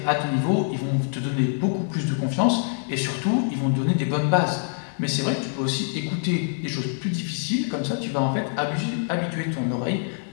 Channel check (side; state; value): right; silent; digital silence